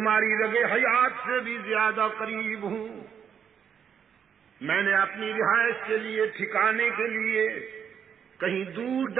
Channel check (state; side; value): quieter; left; 7.8 dB